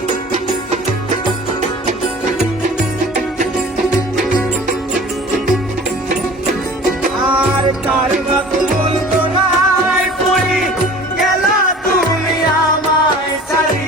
কার বাপ বলতো নাই পড়ি গেলা তুমি আমায় ছাড়ি,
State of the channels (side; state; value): both; normal; correlation 0.44